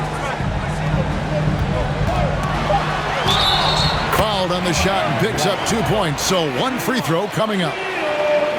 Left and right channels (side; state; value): both; identical; correlation 1.00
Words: Fouled on the shot and picks up 2 points. So 1 free throw coming up.